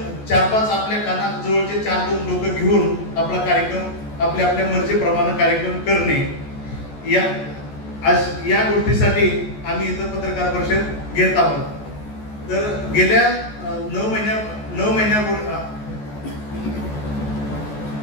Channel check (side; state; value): right; late; 14 ms